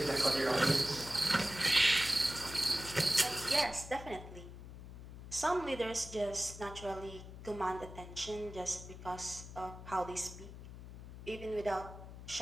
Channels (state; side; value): noise; left; hum, 13 dB below the sound